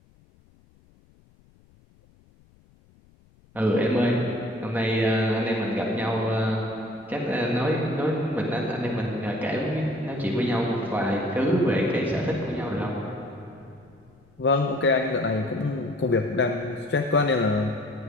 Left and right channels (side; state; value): left; noise; rumble, 30 dB below the sound